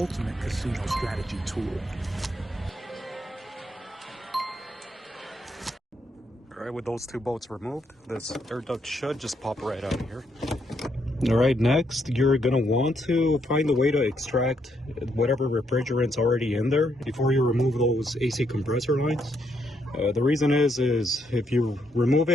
casino strategy tool. Alright, with those two bolts removed, this air duct should just pop right out of here. Alright, next you're going to want to find a way to extract whatever refrigerant's already in there before you remove those AC compressor lines. The reason is if you remove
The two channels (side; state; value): both; normal; correlation 0.76